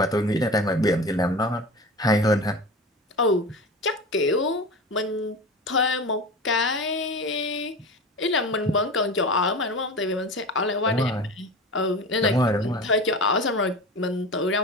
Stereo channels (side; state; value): both; normal; correlation 0.31